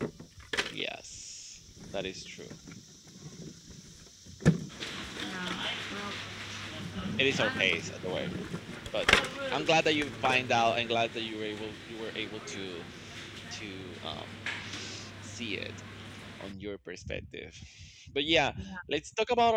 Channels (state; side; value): identical; both; correlation 1.00